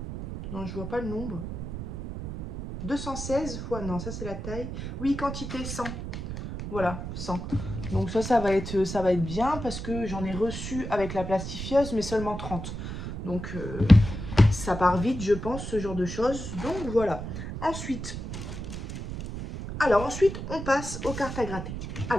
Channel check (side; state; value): right; noise; rumble, 7 dB below the sound